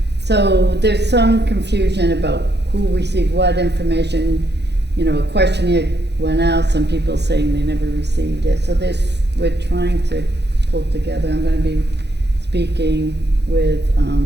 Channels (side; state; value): left; late; 0.49 ms